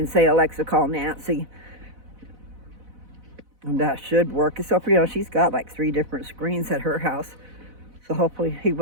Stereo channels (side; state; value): left; late; 4.0 ms